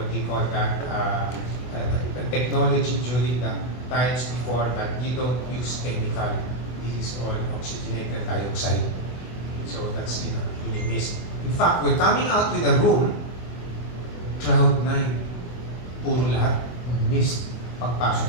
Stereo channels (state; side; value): late; right; 24 ms